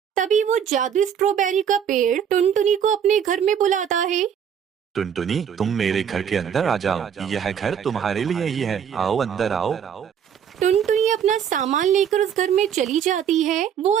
तभी वो जादुई स्ट्रॉबेरी का पेड़ टुनटुनी को अपने घर में बुलाता है। टुनटुनी, तुम मेरे घर के अंदर आ जाओ, यह घर तुम्हारे लिए ही है, आओ अंदर आओ। टुनटुनी अपना सामान लेकर उस घर में चली जाती है। वो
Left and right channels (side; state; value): left; quieter; 8.3 dB